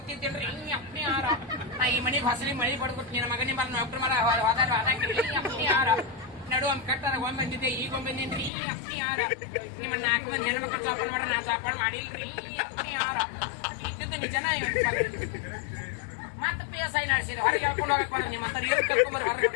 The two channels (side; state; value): right; drops out; at 8.5 s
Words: ಅಪ್ಪಿ ಯಾರ ನಾ ಈ ಮನೆಗೆ ಹೊಸಲಿ ಮಳಿ ಬಡ್ಕೊಟ್ಟು ನಿನ್ನ ಮಗನಿ ಮರ ಡಾಕ್ಟರ್ ಮರ ಹೋದಾಗ ಅಪ್ಪಿ ಯಾರ ನಡು ಒಮ್ಮೆ ಕಟ್ಟಾರ ಒಮ್ಮೆ ಬಂದಿದ್ದೆ ಈಗ ಒಮ್ಮೆ ಬಂದಿನ್ರಿ ಅಪ್ಪಿ ಯಾರ ನಿಮ್ಮ 4 ಮಂದಿ ಹೆಣ್ಮಕ್ಳು ಚಾಪಾಡ್ ಮಾಡ್ರ ನಾ ಚಾಪಾಡ್ ಮಾಡಿಲ್ರಿ ಅಪ್ಪಿ ಯಾರ ಇದ್ದಿದ್ದು ನಿಜನ ಮತ್ತೆ PSI ನಡೆಸಿದೆ ಹೊರಗೆ ಹೇಳ್ಕೊಂಡು ಹೋಗಕ್ ಬರ ನಿಮ್ಮ ಹತ್ರ ಏನು ಕರ್ಕೊಂಬರ್ ಹೊರಗೆ